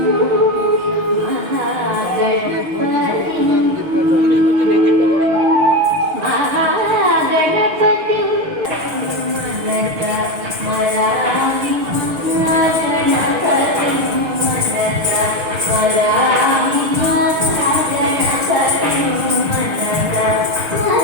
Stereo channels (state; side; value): late; left; 6.3 ms